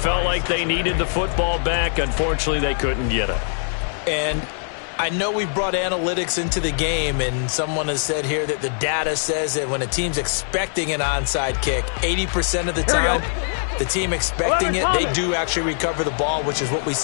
like they needed the football back. Unfortunately, they couldn't get it. And I know we brought analytics into the game, and someone has said here that the data says that when a team's expecting an onside kick, 80% of the time, the team expecting it, they do actually recover the ball, which is what we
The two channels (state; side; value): silent; right; digital silence